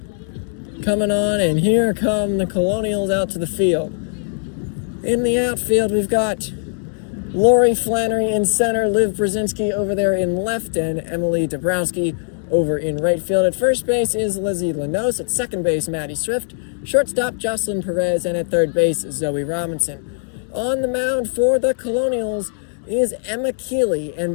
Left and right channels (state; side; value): silent; right; digital silence